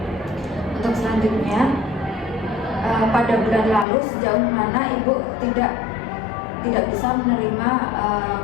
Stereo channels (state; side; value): drops out; right; at 3.9 s